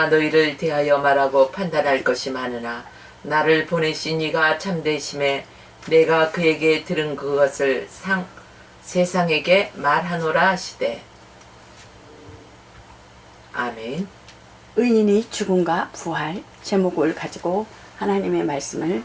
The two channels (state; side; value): identical; both; correlation 1.00